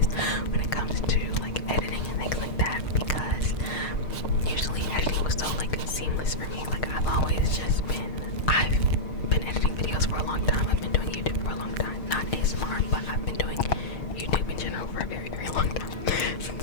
when it comes to like editing and things like that, because usually editing was so like seamless for me. Like I've been editing videos for a long time. I've been doing YouTube for a long time. Not ASMR, but I've been doing YouTube in general for a very, very long time.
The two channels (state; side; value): late; right; 6.5 ms